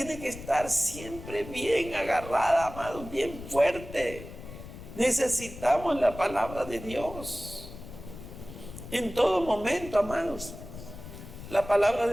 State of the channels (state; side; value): noise; left; rumble, 13 dB below the sound